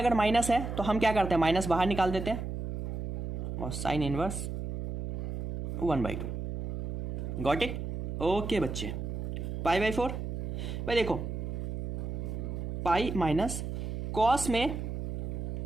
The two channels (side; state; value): right; noise; hum, 4 dB below the sound